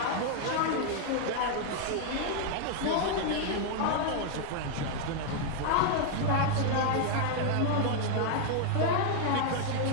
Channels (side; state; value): both; different; correlation 0.00